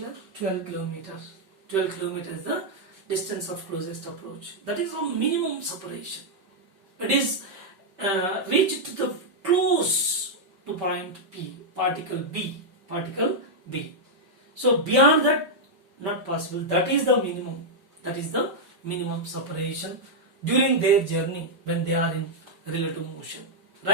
12 kilometers. 12 kilometers is the distance of closest approach. That is a minimum separation. It is reached to the close to point P, particle B. So beyond that, not possible. That is the minimum. That is the minimum separation during their journey when they are in relative motion,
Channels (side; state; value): left; late; 5.2 ms